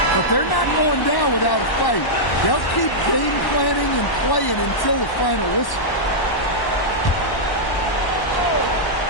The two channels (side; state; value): right; late; 1.1 ms